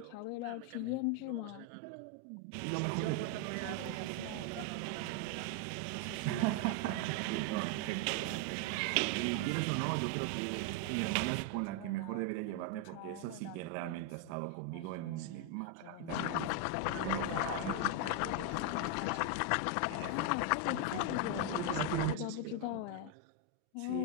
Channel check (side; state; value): both; different; correlation 0.01